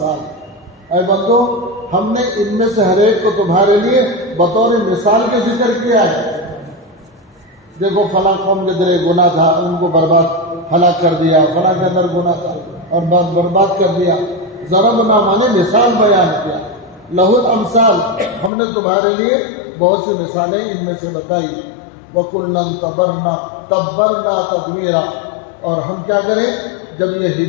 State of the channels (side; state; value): right; drops out; at 18.5 s